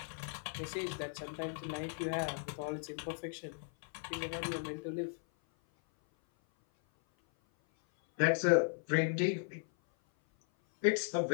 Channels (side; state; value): right; silent; 53 dB below the other